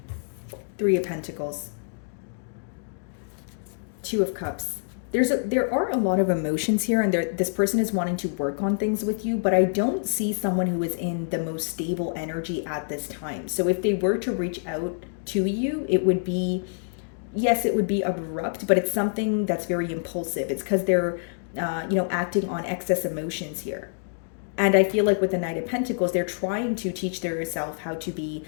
Three of Pentacles. Two of Cups. There are a lot of emotions here, and this person is wanting to work on things with you, but I don't see someone who is in the most stable energy at this time. So if they were to reach out to you, it would be, yes, it would be abrupt, but it's something that's very impulsive. It's because they're, acting on excess emotions here. And I feel like with the Knight of Pentacles, they're trying to teach themselves how to be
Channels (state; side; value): silent; right; digital silence